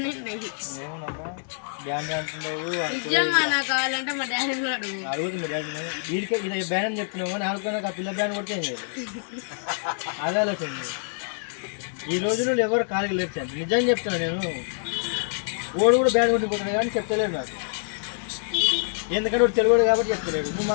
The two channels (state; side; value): silent; right; digital silence